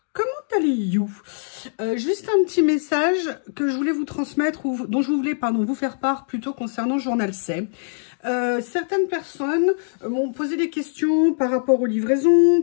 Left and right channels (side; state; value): right; silent; digital silence